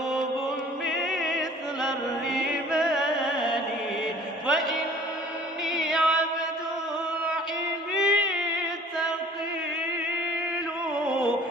مثل الرمال فإني عبد الحب ثقيل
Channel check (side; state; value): both; normal; correlation 0.49